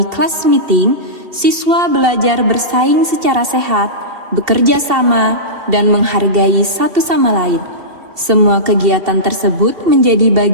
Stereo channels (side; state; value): left; late; 2.7 ms